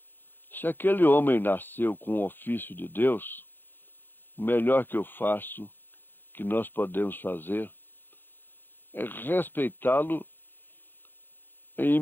Se aquele homem nasceu com o ofício de Deus, o melhor que eu faço, que nós podemos fazer, é respeitá-lo em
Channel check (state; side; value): late; right; 0.097 ms